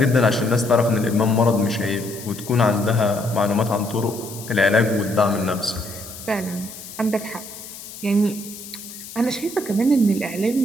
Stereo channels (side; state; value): left; noise; hiss, 14 dB below the sound